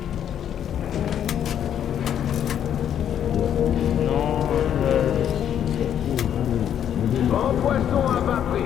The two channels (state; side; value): quieter; right; 9.6 dB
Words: Non, Grand poisson à bas